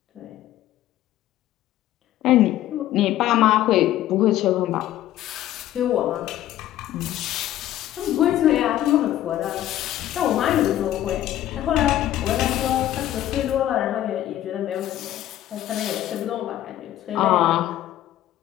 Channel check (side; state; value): right; quieter; 13.2 dB